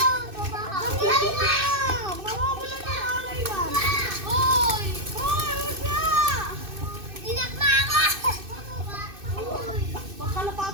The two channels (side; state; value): left; late; 2.6 ms